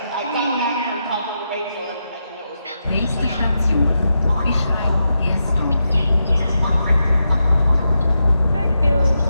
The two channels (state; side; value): inverted; both; correlation -0.86